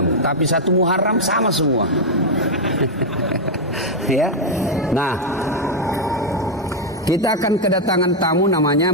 Tapi satu Muharram sama semua. Ya. Nah, kita akan kedatangan tamu namanya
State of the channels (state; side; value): normal; both; correlation 0.00